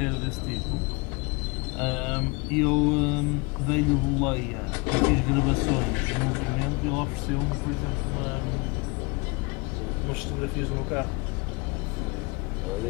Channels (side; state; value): right; quieter; 28.0 dB